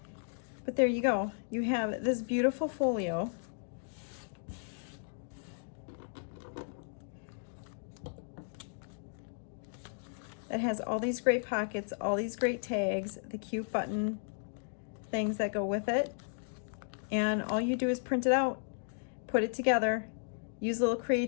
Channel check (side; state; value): right; silent; digital silence